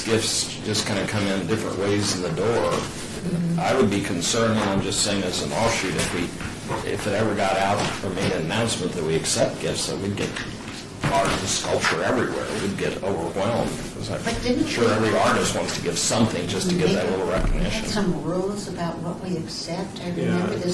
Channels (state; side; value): identical; both; correlation 1.00